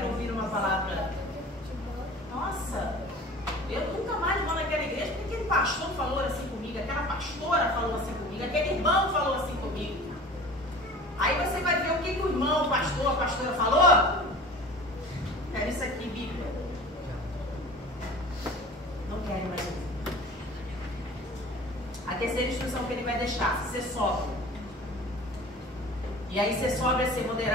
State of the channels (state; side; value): normal; both; correlation 0.40